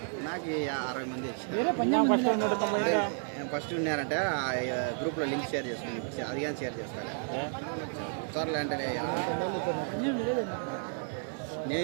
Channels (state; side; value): silent; left; 57 dB below the other